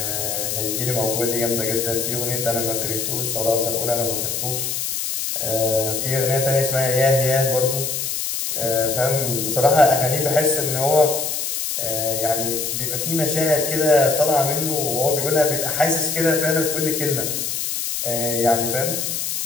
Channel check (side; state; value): left; noise; hiss, 2 dB below the sound